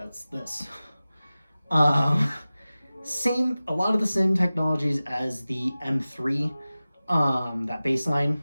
this. A lot of the same technologies as the M3, that baseline,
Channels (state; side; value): inverted; both; correlation -0.97